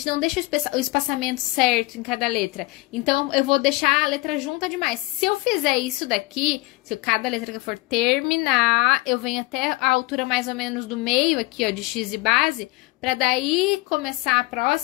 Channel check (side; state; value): right; quieter; 22.8 dB